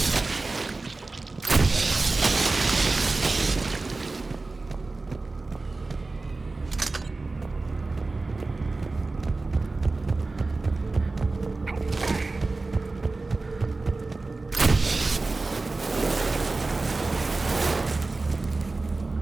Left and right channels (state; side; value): quieter; left; 3.5 dB